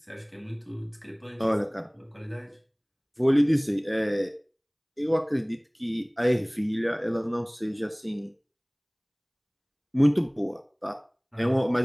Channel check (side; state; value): both; identical; correlation 1.00